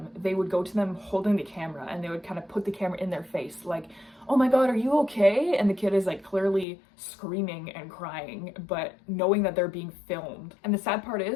they would go to them holding the camera, and they would kind of put the camera in their face like, oh my god, are you okay? And the kid is like clearly screaming and crying, but knowing that they're being filmed. And the sad part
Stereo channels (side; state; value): right; drops out; at 6.7 s